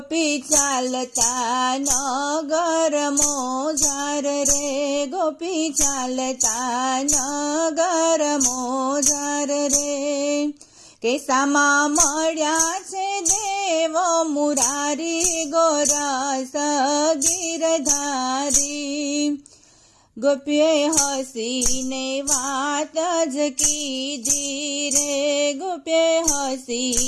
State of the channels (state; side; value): identical; both; correlation 1.00